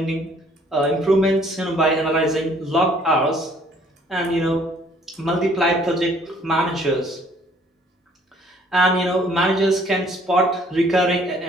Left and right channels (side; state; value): both; normal; correlation 0.59